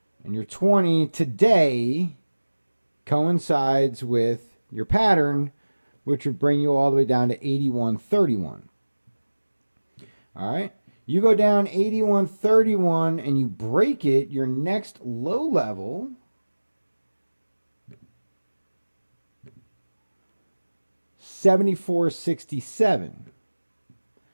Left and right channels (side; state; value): both; inverted; correlation -1.00